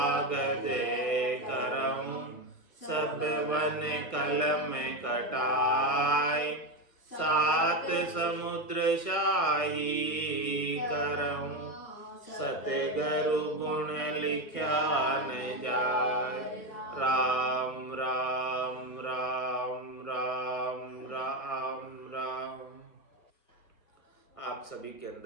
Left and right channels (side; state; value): right; late; 1.6 ms